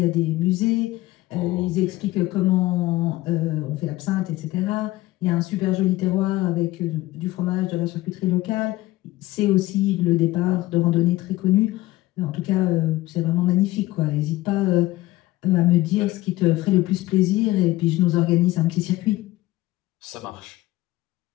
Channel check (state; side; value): quieter; right; 17.8 dB